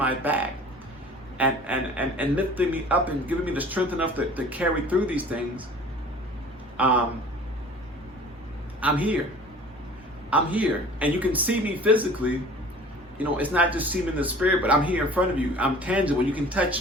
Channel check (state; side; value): normal; both; correlation 0.46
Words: back, and lifting me up and giving me the strength enough to carry through these things, I'm here. I'm here. And you can see me physically. You know, it's not just seeing in the spirit, but I'm here in front of you. I'm tangible. You can